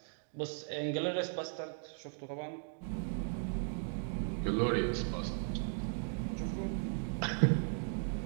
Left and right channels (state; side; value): silent; left; digital silence